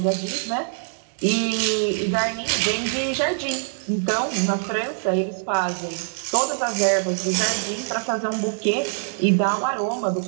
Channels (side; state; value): left; silent; 63 dB below the other